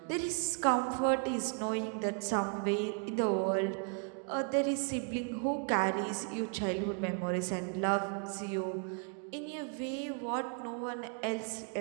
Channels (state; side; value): quieter; left; 39.9 dB